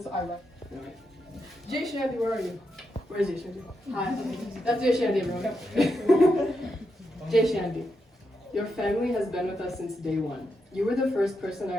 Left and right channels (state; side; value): normal; both; correlation 0.84